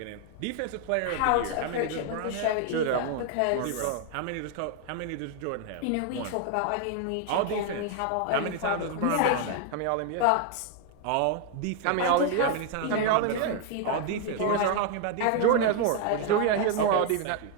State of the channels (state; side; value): different; both; correlation 0.01